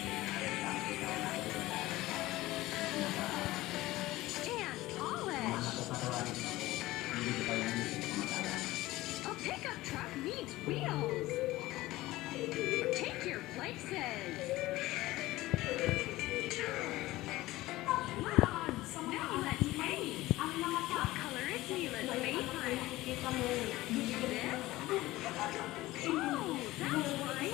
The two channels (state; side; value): quieter; right; 17.8 dB